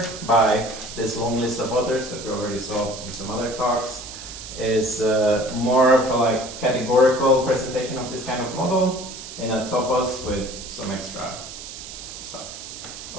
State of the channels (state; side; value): noise; right; hiss, 11 dB below the sound